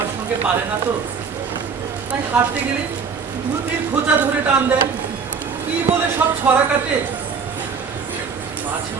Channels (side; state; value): left; quieter; 5.8 dB